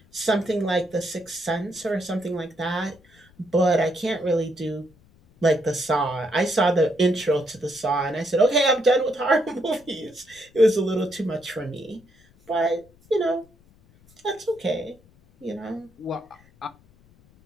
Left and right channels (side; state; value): left; noise; rumble, 29 dB below the sound